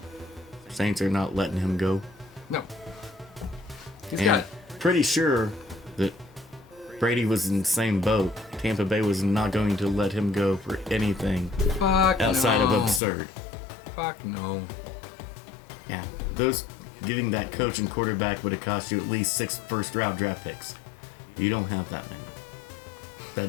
Saints are not letting him go. No. He's And got, pretty sure that Brady was in the same boat. Tampa Bay was not going to let him go for anything fuck outside no. of absurd. Fuck no. Yeah, those getting that coach and quarterback would have cost you at least 6 first-round draft picks. You don't have that many.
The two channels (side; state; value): right; drops out; at 13.0 s